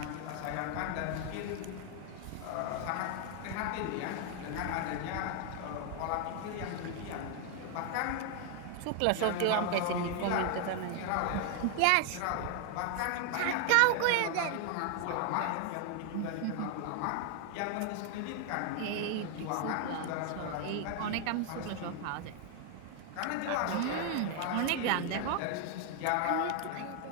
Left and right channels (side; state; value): both; different; correlation 0.00